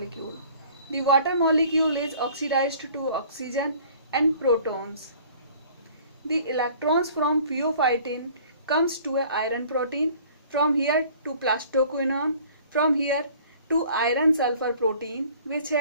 The water molecule is oxidized to oxygen and protons. The electrons from pheophytin comes to a iron protein, from here to plastoquinone, from here to iron sulfur protein, which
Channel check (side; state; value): both; inverted; correlation -0.52